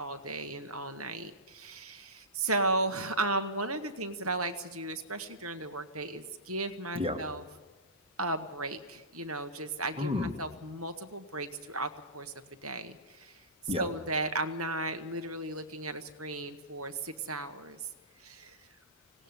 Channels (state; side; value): normal; both; correlation -0.19